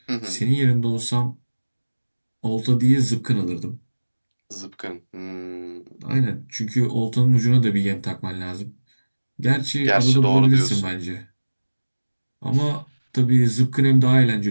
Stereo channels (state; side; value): inverted; both; correlation -1.00